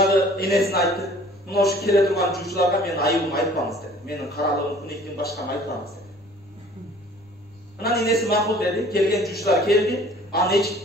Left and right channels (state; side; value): noise; left; rumble, 30 dB below the sound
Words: энесине айтты. Мына ушу келе турган жуучуларга менин айыбымды айтпаңыз деди. Менин каралыгым, куниктин башканы айтпаңыз деди. Анан энеси макул деди. Келген жуучулар келди. Анын эч